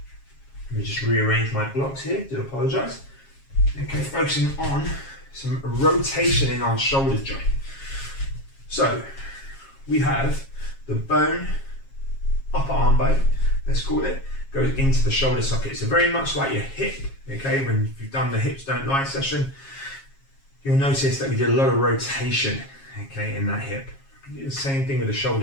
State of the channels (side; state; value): right; late; 7.3 ms